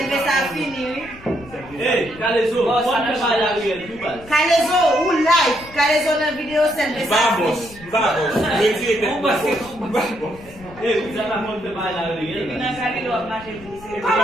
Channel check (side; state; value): left; noise; rumble, 20 dB below the sound